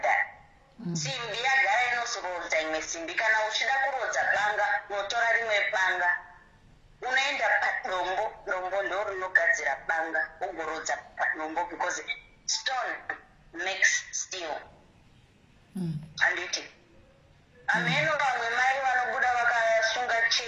that. Simbi yagara inozorodza imwe simbi. Kana uchida kurodza banga unotora rimwe banga unoenda padombo, dombo ndo rinogadzira banga ugorodza padombo because stone makes steel. Handiti ameno vamwe mai vanobuda vakasunga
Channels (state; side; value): identical; both; correlation 1.00